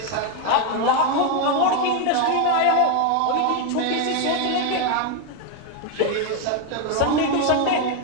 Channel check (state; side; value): different; both; correlation 0.02